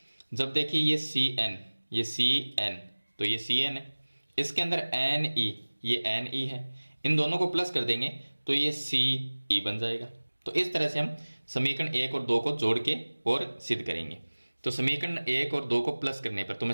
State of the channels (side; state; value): both; inverted; correlation -1.00